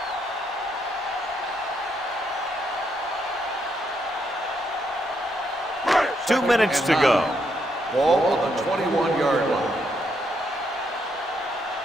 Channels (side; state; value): both; normal; correlation 0.76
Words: Two minutes to go. Ball on the 21-yard line.